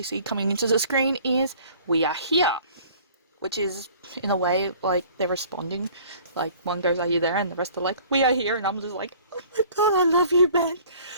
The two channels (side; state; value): both; inverted; correlation -0.51